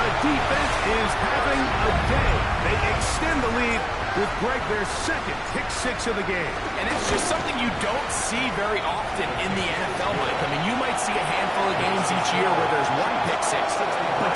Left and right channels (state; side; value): identical; both; correlation 1.00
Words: defense is having a day. They extend the lead with Greg their second pick six of the game. And it's just something you don't see very often in the NFL, Mike. I mean, you might see a handful of games each year where there's one pick six. But